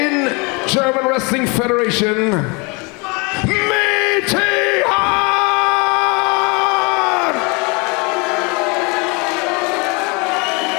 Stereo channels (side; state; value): right; quieter; 29.7 dB